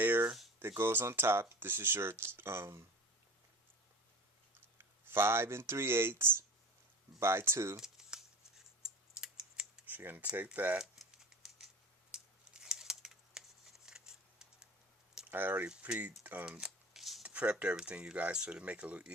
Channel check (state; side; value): normal; both; correlation 0.36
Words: that goes on top. This is your 5 3/8 by 2. So you're going to take that. I already prepped everything, you guys, so to make it a little